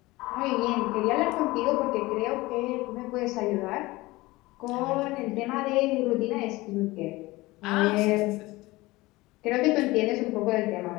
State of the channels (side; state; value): right; quieter; 20.5 dB